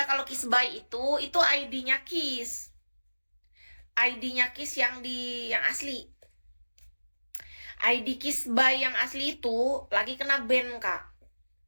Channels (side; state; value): both; inverted; correlation -1.00